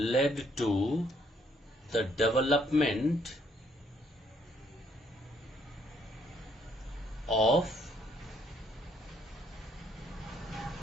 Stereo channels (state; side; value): normal; both; correlation 0.68